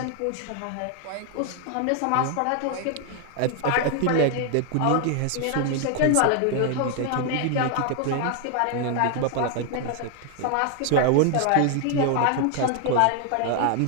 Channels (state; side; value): different; both; correlation 0.00